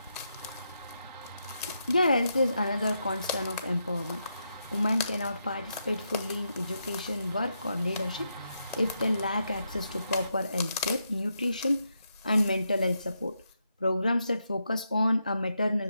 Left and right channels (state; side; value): inverted; both; correlation -0.83